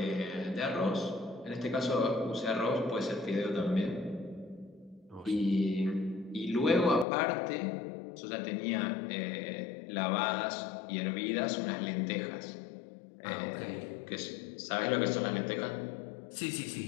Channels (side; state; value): right; drops out; at 7.1 s